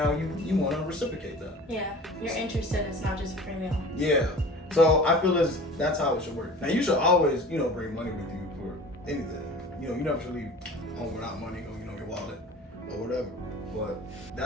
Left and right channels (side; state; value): both; normal; correlation 0.40